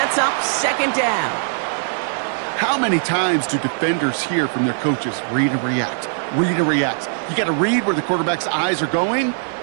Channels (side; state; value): left; silent; 66 dB below the other